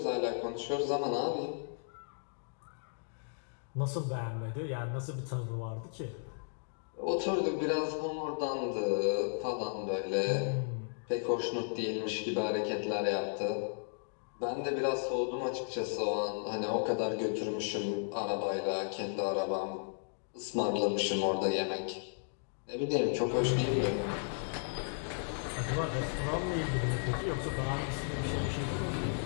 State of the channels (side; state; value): right; silent; digital silence